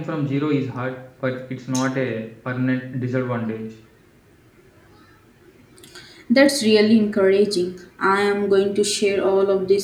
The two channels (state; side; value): identical; both; correlation 1.00